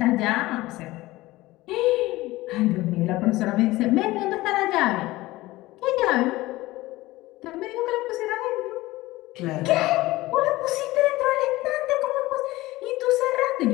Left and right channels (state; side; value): quieter; right; 18.6 dB